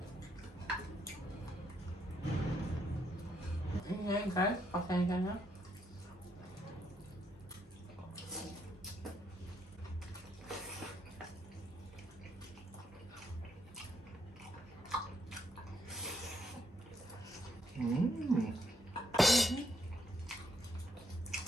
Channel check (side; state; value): both; normal; correlation 0.76